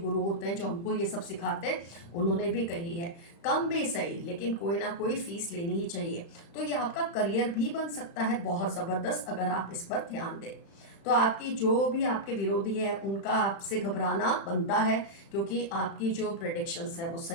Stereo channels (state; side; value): late; right; 35 ms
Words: होते हैं, जो हमको ये सब सिखाते हैं, उन्होंने भी कही है। कम भी सही, लेकिन कोई ना कोई फीस लेनी ही चाहिए। तो ये आपका करियर भी बन सकता है बहुत ज़बरदस्त, अगर आप इस पर ध्यान दें। तो आपकी जो भी आपके विरोधी है, उनका आपसे घबराना बनता है, क्योंकि आपकी जो प्रेडिक्शंस है वो